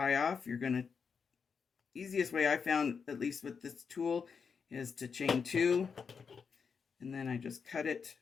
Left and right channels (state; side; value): quieter; right; 5.9 dB